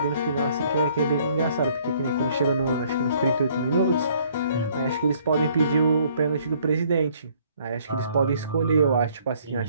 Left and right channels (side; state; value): both; inverted; correlation -0.62